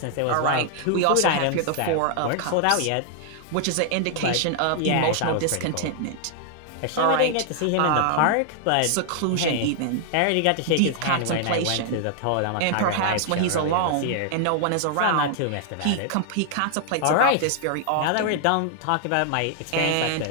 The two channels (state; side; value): different; both; correlation 0.00